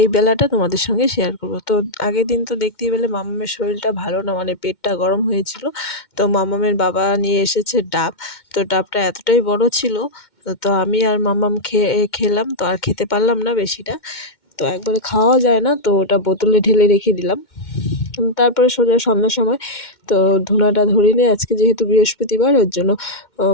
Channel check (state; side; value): late; right; 2.1 ms